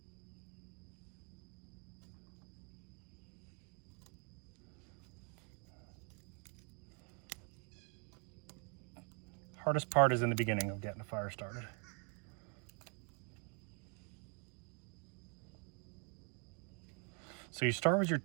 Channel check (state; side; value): quieter; left; 37.4 dB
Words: Hardest part is in the beginning of getting a fire started. So you start with your